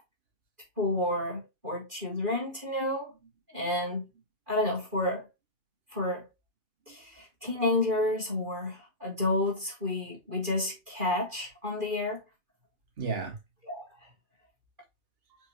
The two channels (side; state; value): left; late; 2.4 ms